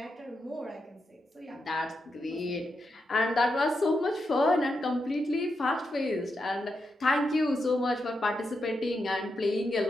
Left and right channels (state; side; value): normal; both; correlation 0.85